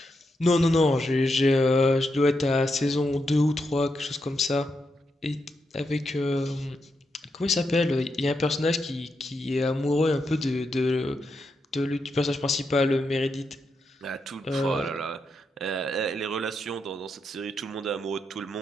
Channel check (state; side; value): normal; both; correlation 0.83